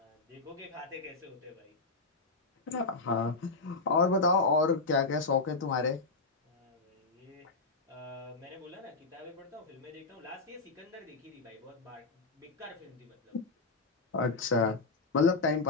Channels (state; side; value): quieter; right; 3.7 dB